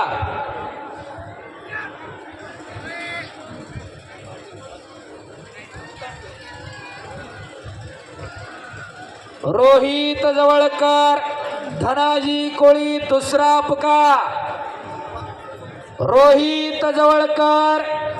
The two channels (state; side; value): identical; both; correlation 1.00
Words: रोहित जवळकर, धनाजी कोळी दुसरा पुकार। रोहित जवळकर,